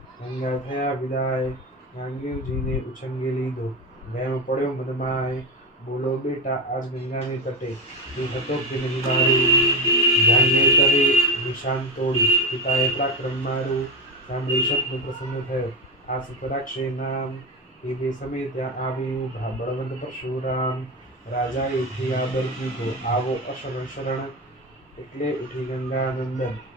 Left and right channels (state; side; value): normal; both; correlation 0.17